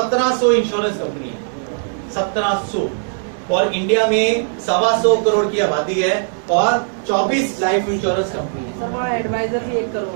इंश्योरेंस कंपनी है, 1700, और इंडिया में 125 करोड़ की आबादी है और 24 लाइफ इंश्योरेंस कंपनी है। सर वहाँ एडवाइजर भी 1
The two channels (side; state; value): left; silent; 67 dB below the other